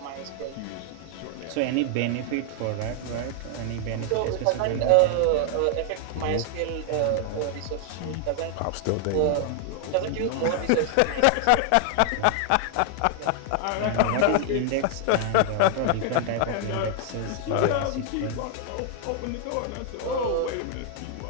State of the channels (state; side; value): different; both; correlation 0.00